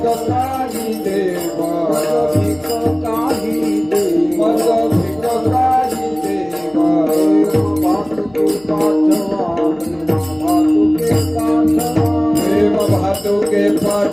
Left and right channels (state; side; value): noise; left; hum, 27 dB below the sound